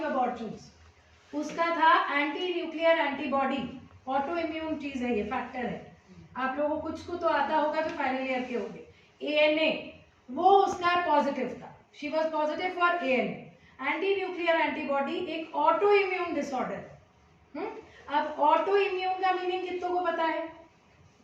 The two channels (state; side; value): identical; both; correlation 1.00